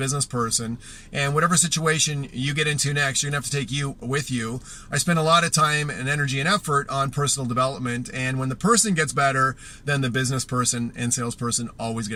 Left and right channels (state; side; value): identical; both; correlation 1.00